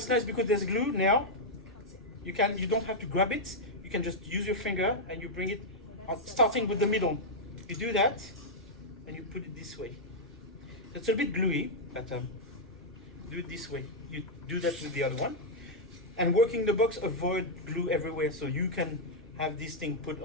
nice, because there's glue now, you don't have to grab it. You can just use your finger and you bring it starting with the middle. You do that and you put it this way. It's a bit gluey, but do it this way. You do that with the other one. And working the box, avoid glue everywhere, so you can have this thing put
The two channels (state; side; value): normal; both; correlation -0.04